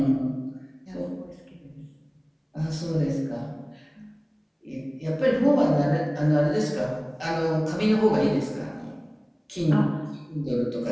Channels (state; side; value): identical; both; correlation 1.00